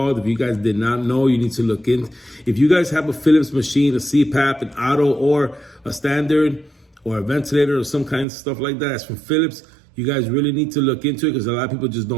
If you guys did not know, you need to look in. If you guys have a Phillips machine, a CPAP, an auto, or a standard, or a ventilator, or some kind of stuff like that, that's from Phillips, you guys really need to look into it because a lot of people just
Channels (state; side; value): drops out; left; at 8.2 s